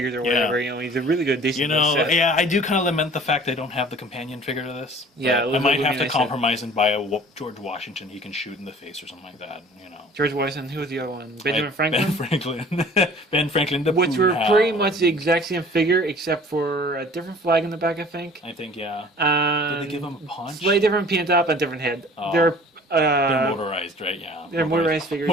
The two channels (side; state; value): both; normal; correlation 0.49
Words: or whatever, Yeah. you know, he's a really good, decent You know, set. yeah, I do kind of lament the fact I don't have the companion figure to this. Yeah, But it I might would have be to nice compromise and buy a George Washington he can shoot in the face or something like that, you know. George Washington, who was the other one? Benjamin Franklin? Ben Franklin. Ben Franklin, the Which were Poon pretty Hound. much the exact same figure, except for a different flag in the back, I think. I think, yeah. Did Did they give him a punch? Slightly different paint up and different head. Oh. They're They're motorized, right? Yeah. they're motorized figures.